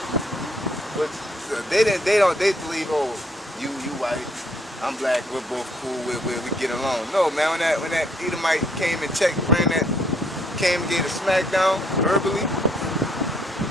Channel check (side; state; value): both; normal; correlation 0.68